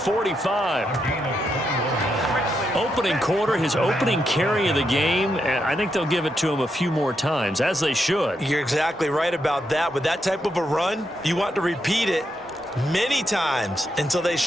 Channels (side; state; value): both; normal; correlation 0.82